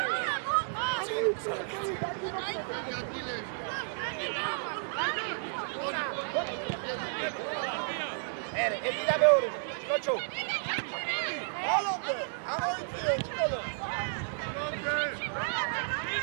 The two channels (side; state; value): left; silent; digital silence